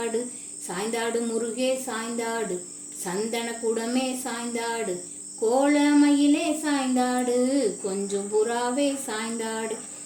சாய்ந்தாடு முருகே சாய்ந்தாடு, சந்தன குடமே சாய்ந்தாடு, கோலமயிலே சாய்ந்தாடு, கொஞ்சம் புறாவே சாய்ந்தாடு,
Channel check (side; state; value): both; identical; correlation 1.00